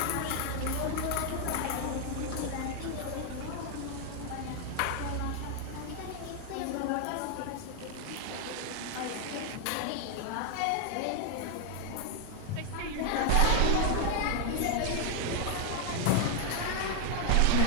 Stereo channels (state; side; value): different; both; correlation 0.00